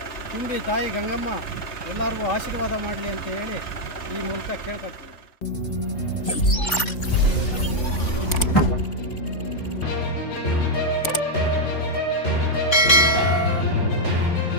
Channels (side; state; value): right; late; 3.5 ms